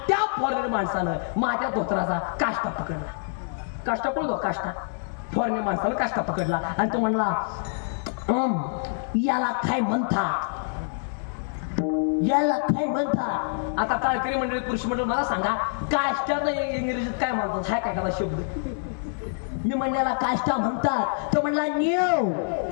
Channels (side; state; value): right; silent; 61 dB below the other